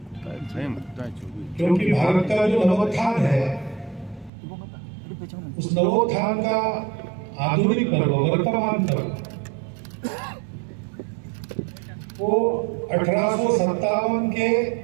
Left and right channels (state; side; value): drops out; left; at 4.3 s